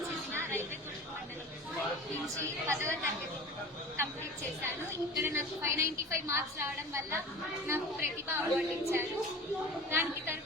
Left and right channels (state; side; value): normal; both; correlation 0.36